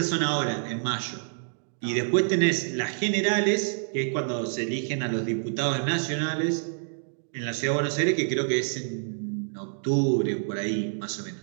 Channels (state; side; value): silent; left; digital silence